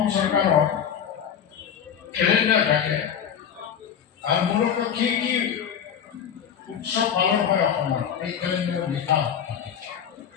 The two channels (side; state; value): right; quieter; 8.3 dB